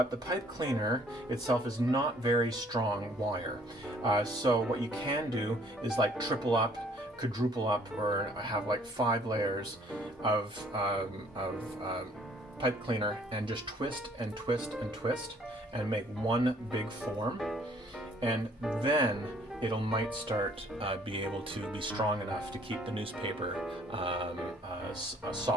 the pipe cleaner itself is not very strong wire. So what you can do is like triple up, quadruple up, or have like 5 layers of pipe cleaner, and just twist and twist and twist and make one big form, and then it'll might start be able to be strong enough to keep the newspaper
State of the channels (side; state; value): both; normal; correlation 0.59